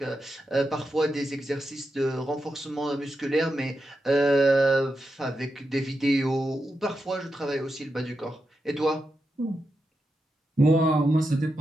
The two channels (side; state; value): both; normal; correlation 0.87